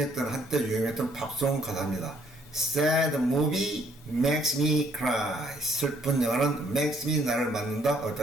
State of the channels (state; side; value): normal; both; correlation 0.66